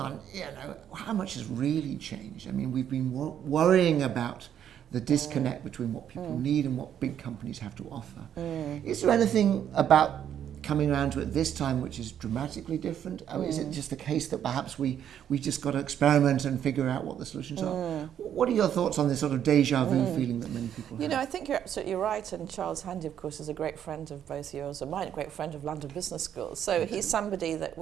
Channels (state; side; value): quieter; left; 9.6 dB